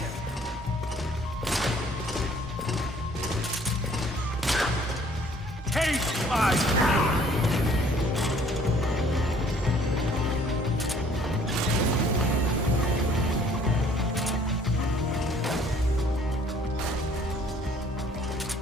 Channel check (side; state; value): both; normal; correlation 0.58